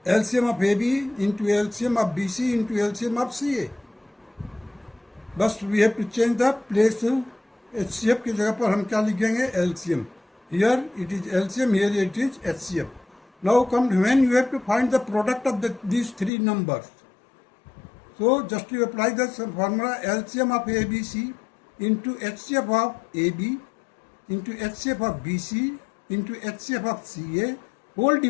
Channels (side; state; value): right; drops out; at 16.3 s